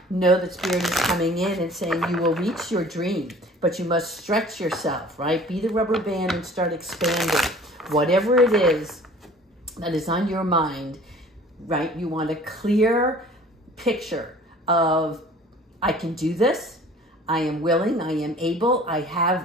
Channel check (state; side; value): normal; both; correlation 0.48